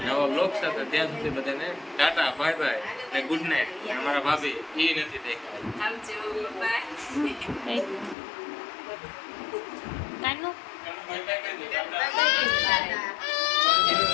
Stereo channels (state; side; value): drops out; right; at 8.2 s